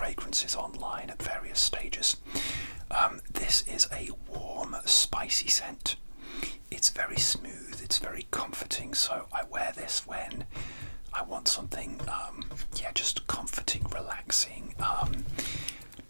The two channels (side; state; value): both; inverted; correlation -1.00